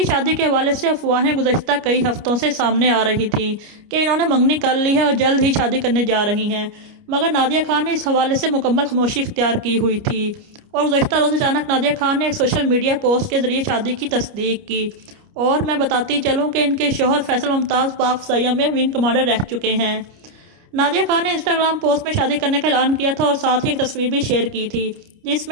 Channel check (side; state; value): left; late; 29 ms